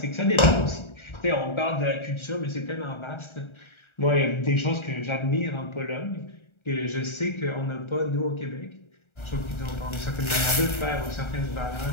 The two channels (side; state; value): right; late; 1.3 ms